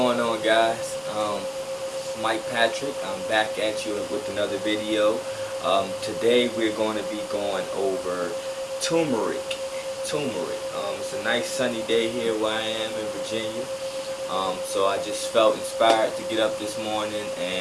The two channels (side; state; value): both; identical; correlation 1.00